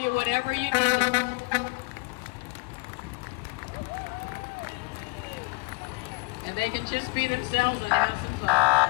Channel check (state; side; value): quieter; right; 29.1 dB